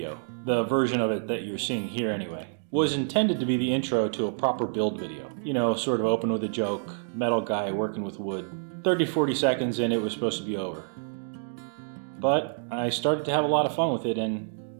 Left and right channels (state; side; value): silent; left; digital silence